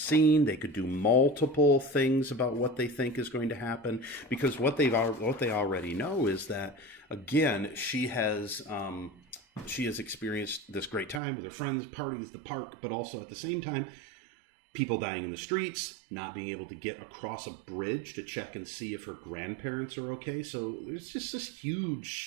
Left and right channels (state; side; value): drops out; left; at 11.2 s